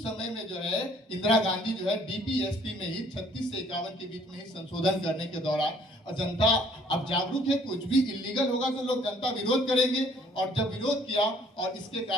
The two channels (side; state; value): both; normal; correlation 0.59